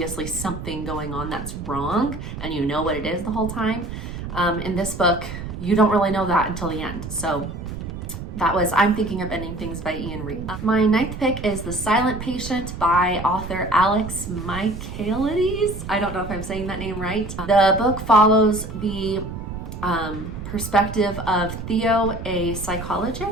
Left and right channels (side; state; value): right; noise; rumble, 8 dB below the sound